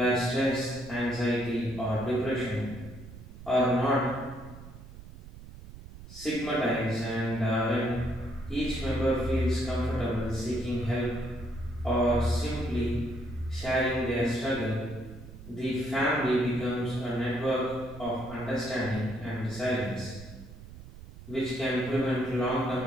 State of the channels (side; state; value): right; noise; rumble, 16 dB below the sound